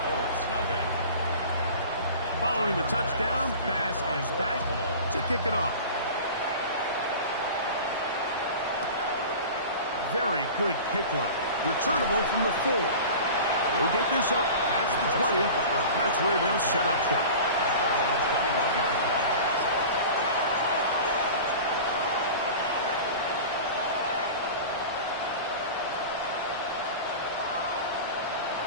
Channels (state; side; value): inverted; both; correlation -0.36